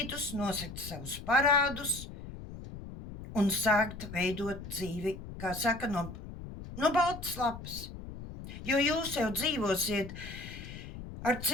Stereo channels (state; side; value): noise; left; rumble, 11 dB below the sound